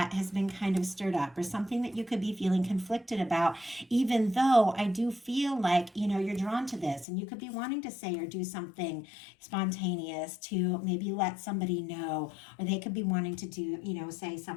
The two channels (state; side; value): drops out; right; at 7.1 s